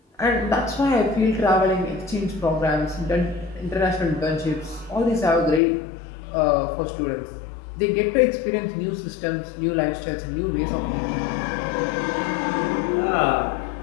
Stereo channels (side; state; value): right; drops out; at 5.6 s